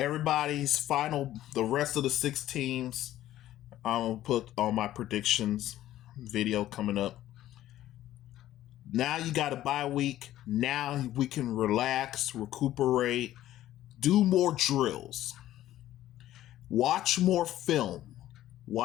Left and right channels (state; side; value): quieter; right; 13.6 dB